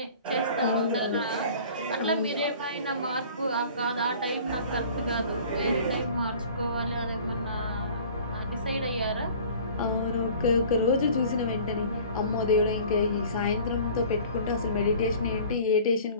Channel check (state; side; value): inverted; both; correlation -0.47